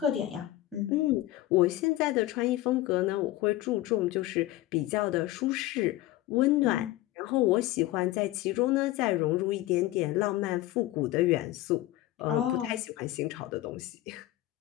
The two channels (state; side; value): quieter; right; 16.1 dB